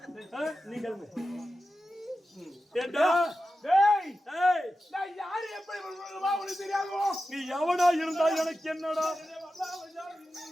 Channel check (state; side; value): normal; both; correlation 0.92